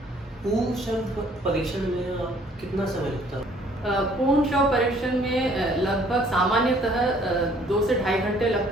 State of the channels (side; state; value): both; normal; correlation 0.59